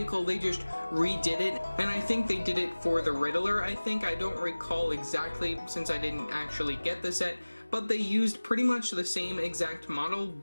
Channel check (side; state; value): both; inverted; correlation -1.00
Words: They just redid it, and I think they did it for the Riddler. I don't recall exactly since I didn't actually get the set, but they used pretty much the same exact model,